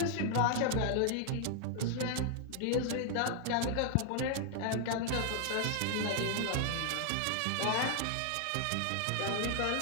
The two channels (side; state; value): both; different; correlation 0.00